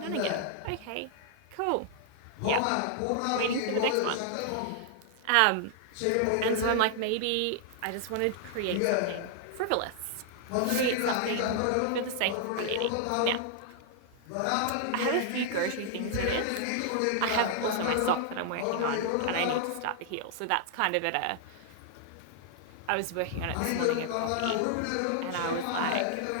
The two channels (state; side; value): different; both; correlation -0.01